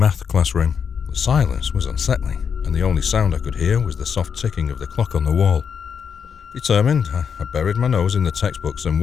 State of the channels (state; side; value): quieter; right; 6.9 dB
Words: classroom. The silence was unsettling, and the only sound I could hear was the soft ticking of the clock on the wall. Determined, I buried my nose in the textbooks and